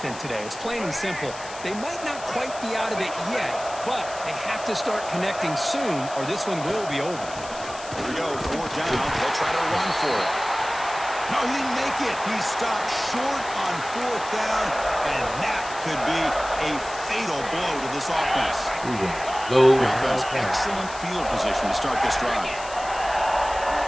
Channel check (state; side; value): noise; left; hiss, 14 dB below the sound